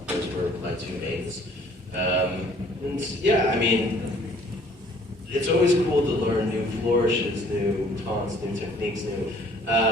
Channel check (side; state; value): both; normal; correlation 0.57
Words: Those were my two mains. And yeah, I mean, it's always cool to learn new flourishes, new taunts, new techniques, new.